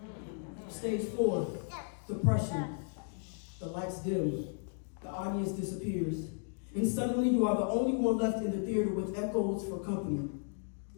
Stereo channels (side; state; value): right; silent; 55 dB below the other